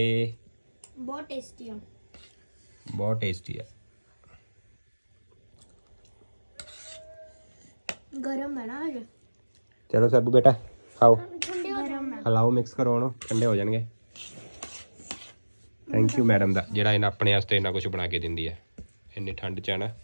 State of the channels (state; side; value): inverted; both; correlation -1.00